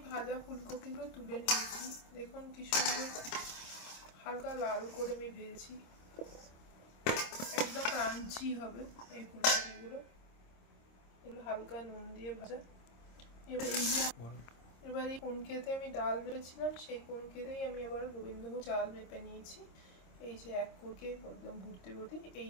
ভাজা ফুলকপিগুলো তুলে নিয়েছি, দেখুন কি সুন্দর হালকা লাল করে আমি ভেজেছি, একদম ক্রাঞ্চি হবে এই ফুলকপিগুলো। এগুলো হালকা নুন দিয়ে ভাজা। এবার এই কোনকেতে আমি ডাল মেপেছিলাম, সেই কোনকেতেই আমি আবার গোবিন্দভোগ চাল মেপে নিয়েছি। এই যে এক কোটে একদম ভর্তি ভর্তি এই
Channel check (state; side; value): late; right; 26 ms